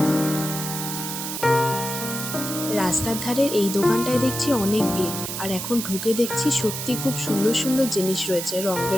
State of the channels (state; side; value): noise; right; hiss, 5 dB below the sound